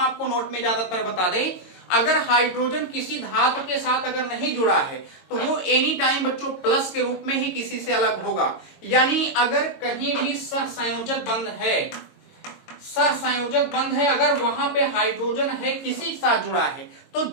नोट में ज्यादातर बता दें, अगर हाइड्रोजन किसी धातु के साथ अगर नहीं जुड़ा है तो वो एनी टाइम बच्चों प्लस के रूप में ही किसी से अलग होगा। यानी अगर कहीं भी सहसंयोजक बंध है, सहसंयोजक बंध है, अगर वहां पे हाइड्रोजन है किसी के साथ जुड़ा है तो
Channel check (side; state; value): right; late; 22 ms